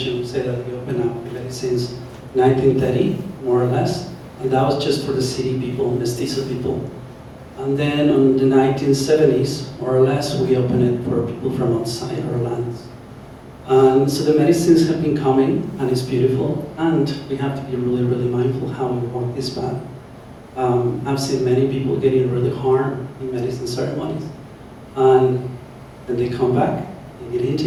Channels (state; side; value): identical; both; correlation 1.00